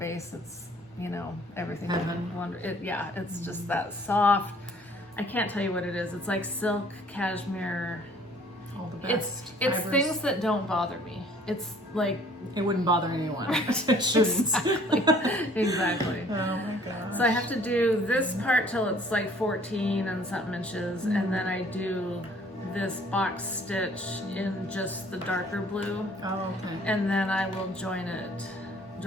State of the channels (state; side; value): normal; both; correlation 0.56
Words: It's everything. Heaven. It's just that soft. I can't tell you what it is. It's like silk, cashmere. All the best. It's fibers. things that don't bother me. It's like It wouldn't bother anyone. It shouldn't. exactly. Oh my gosh. So I have to do this part till it's like 14 and something inches, and then I do this box stitch in just the darker blue, Oh, okay. and then I will join it